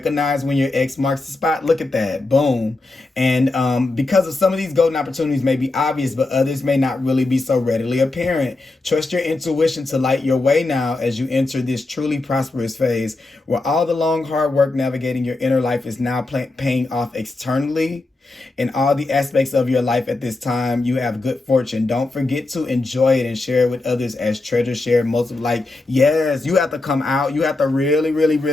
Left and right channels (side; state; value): right; quieter; 3.1 dB